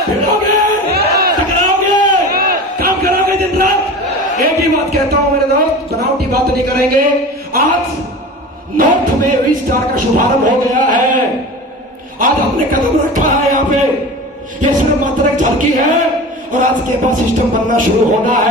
भिड़ोगे, टकराओगे, काम करोगे दिन रात। एक ही बात कहता हूं मेरे दोस्त, बनावटी बात नहीं करेंगे। आज नॉर्थ में विस्तार का शुभारंभ हो गया है, आज हमने कदम रखा है यहाँ पे। ये सिर्फ मात्र एक झलकी है, और आज के बाद सिस्टम बनना शुरू होना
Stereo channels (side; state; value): both; normal; correlation 0.33